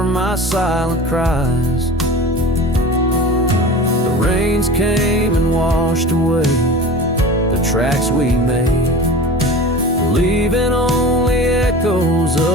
my silent cries. The rains came and washed away the tracks we made, leaving only echoes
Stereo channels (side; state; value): both; normal; correlation 0.35